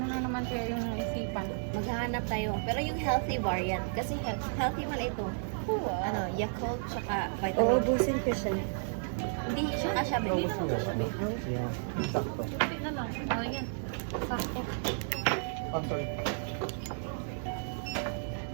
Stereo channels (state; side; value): silent; left; digital silence